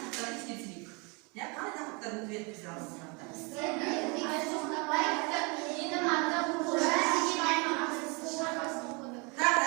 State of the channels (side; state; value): left; quieter; 30.5 dB